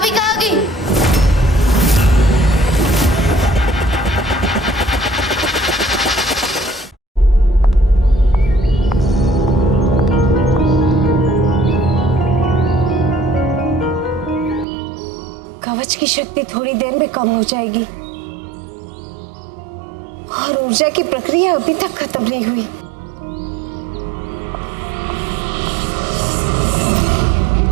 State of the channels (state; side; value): drops out; left; at 14.7 s